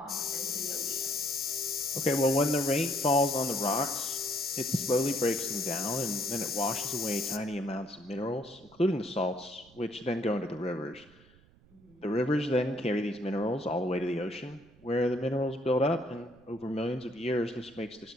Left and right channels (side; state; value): right; noise; rumble, 27 dB below the sound